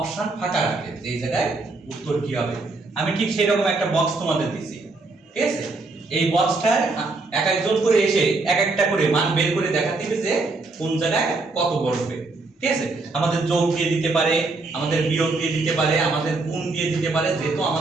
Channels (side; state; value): left; quieter; 3.5 dB